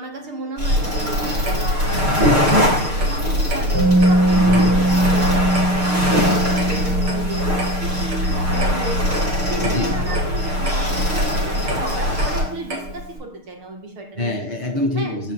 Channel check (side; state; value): left; late; 6.6 ms